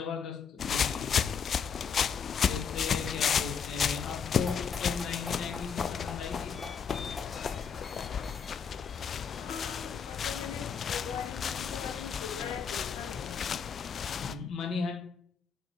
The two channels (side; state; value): right; quieter; 6.7 dB